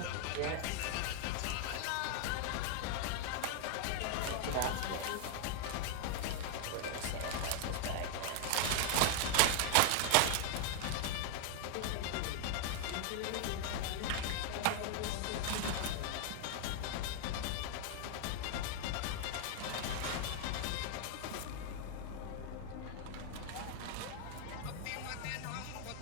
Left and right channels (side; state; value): both; different; correlation 0.00